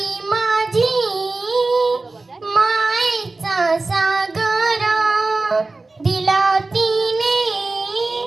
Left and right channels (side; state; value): left; quieter; 3.4 dB